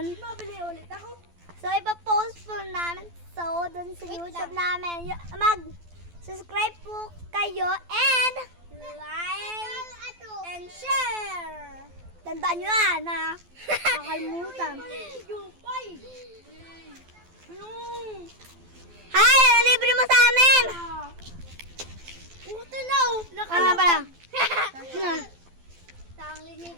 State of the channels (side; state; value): left; late; 12 ms